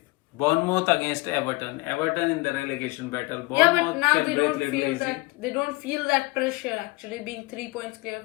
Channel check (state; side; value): quieter; right; 23.7 dB